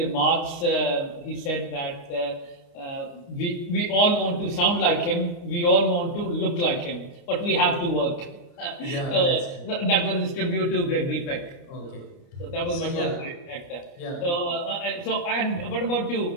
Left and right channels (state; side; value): late; right; 29 ms